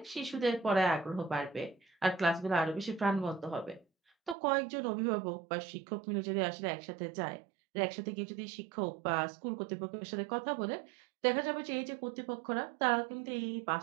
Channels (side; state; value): left; drops out; at 4.4 s